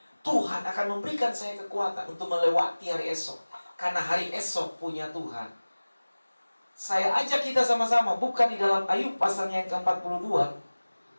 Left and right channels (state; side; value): inverted; both; correlation -1.00